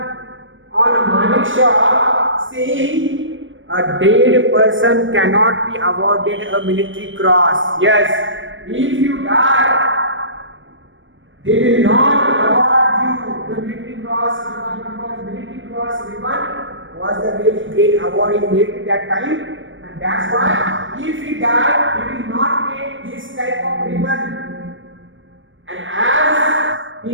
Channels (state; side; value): late; left; 0.56 ms